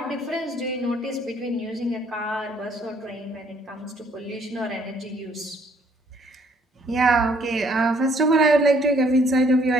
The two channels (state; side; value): normal; both; correlation 0.64